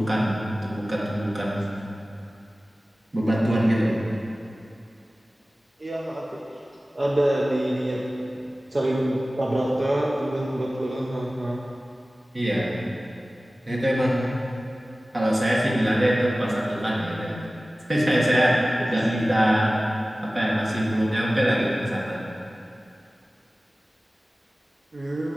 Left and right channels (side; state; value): both; normal; correlation 0.97